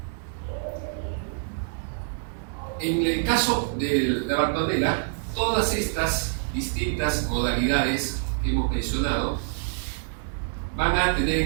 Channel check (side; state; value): left; silent; digital silence